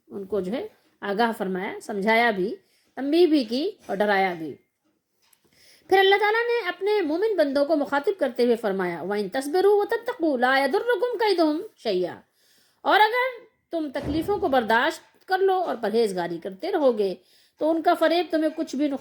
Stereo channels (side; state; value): both; identical; correlation 1.00